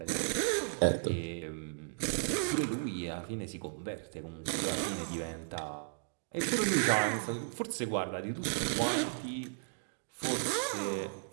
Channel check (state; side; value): silent; left; digital silence